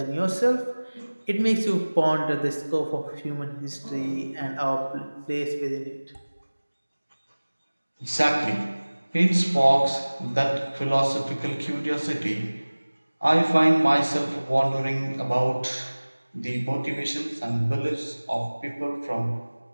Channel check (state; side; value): inverted; both; correlation -1.00